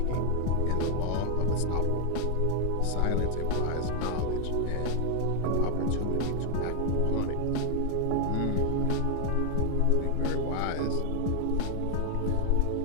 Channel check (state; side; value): different; both; correlation 0.00